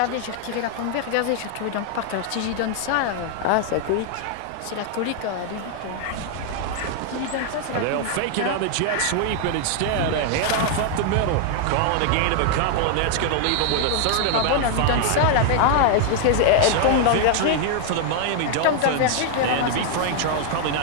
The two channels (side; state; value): both; different; correlation 0.00